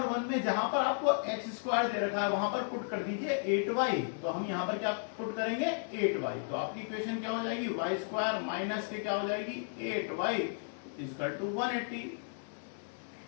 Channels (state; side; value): silent; right; digital silence